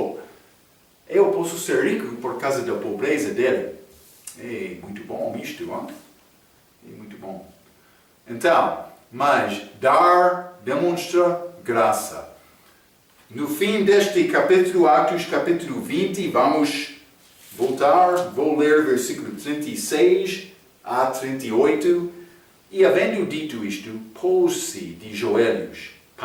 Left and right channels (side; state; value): both; identical; correlation 1.00